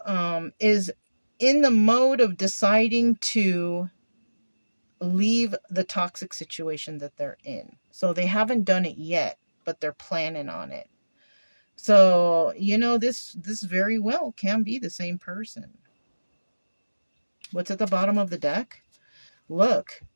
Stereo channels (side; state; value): both; inverted; correlation -1.00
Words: is in the mode of deciding to leave the toxic situation that they're in. So they haven't done it yet, but they're planning on it. So, you know, this very well can be the same person. What's at the bottom of the deck? Look,